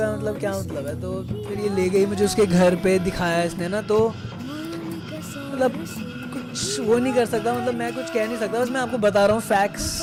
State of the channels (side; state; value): both; identical; correlation 1.00